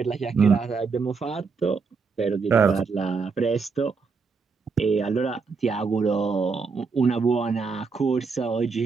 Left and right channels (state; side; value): quieter; left; 4.9 dB